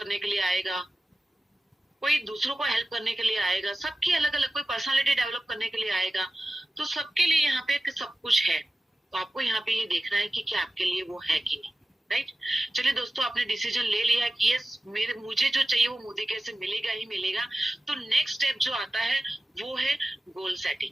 के लिए आएगा, कोई दूसरों को हेल्प करने के लिए आएगा। सबकी अलग अलग, कोई पर्सनालिटी डेवलप करने के लिए आएगा। तो सबके लिए यहाँ पे सब कुछ है। तो आपको यहाँ पे ये देखना है कि क्या आपके लिए वो है कि नहीं, राइट। चलिए दोस्तों, आपने डिसीजन ले लिया कि यस मुझे जो चाहिए वो मोदी केयर से मिलेगा ही मिलेगा। तो नेक्स्ट स्टेप जो आता है वो है गोल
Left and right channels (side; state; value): both; normal; correlation 0.95